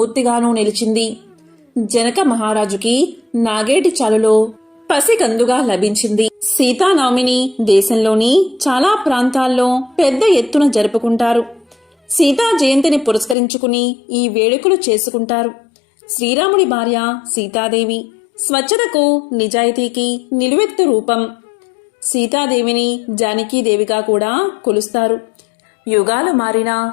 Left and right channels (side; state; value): right; drops out; at 13.4 s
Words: నిలిచింది. జనక మహారాజుకి నాగేటి చాలులో పసికందుగా లభించింది. సీతానవమిని దేశంలోని చాలా ప్రాంతాల్లో పెద్ద ఎత్తున జరుపుకుంటారు. సీతా జయంతిని పురస్కరించుకుని ఈ వేడుకలు చేసుకుంటారు. శ్రీరాముడి భార్య సీతాదేవి స్వచ్ఛతకు నిజాయితీకి నిలువెత్తు రూపం. సీతాదేవిని జానకీదేవిగా కూడా కొలుస్తారు. యుగాలు మారిన